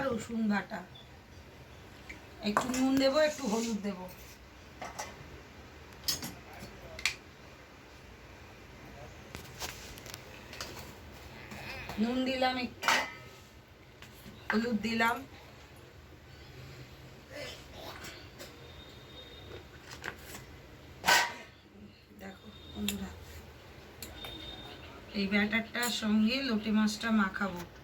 রসুন বাটা, একটু নুন দেবো, একটু হলুদ দেবো। নুন দিলাম, একটু হলুদ দিলাম, দেখো বন্ধুরা এই ব্যাটারটার সঙ্গে লোটে মাছটা মাখাবো।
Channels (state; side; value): identical; both; correlation 1.00